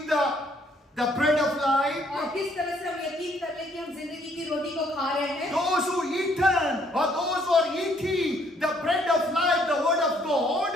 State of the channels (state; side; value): normal; both; correlation 0.66